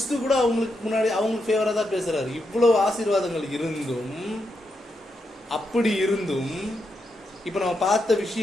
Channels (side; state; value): both; normal; correlation 0.83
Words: கூட அவங்களுக்கு முன்னாடி அவங்களுக்கு ஃபேவரா தான் பேசுறாரு. இவ்வளவு ஆசீர்வாதங்கள் இருந்தும், அப்படி இருந்தும், இப்ப நம்ம பார்த்த